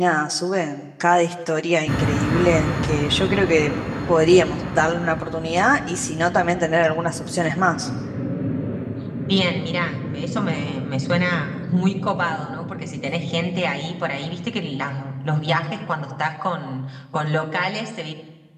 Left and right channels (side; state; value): both; identical; correlation 1.00